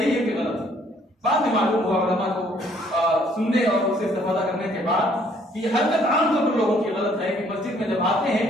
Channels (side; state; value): both; normal; correlation 0.63